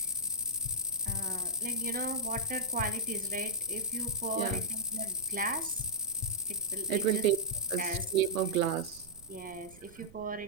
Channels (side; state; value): right; noise; rumble, 21 dB below the sound